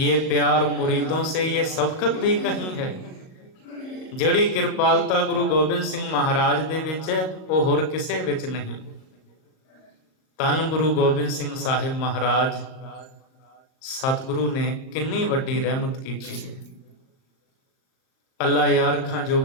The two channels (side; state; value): right; late; 38 ms